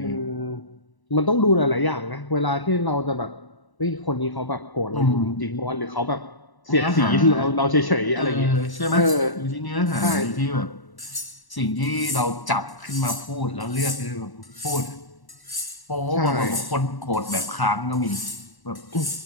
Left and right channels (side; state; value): right; late; 1.1 ms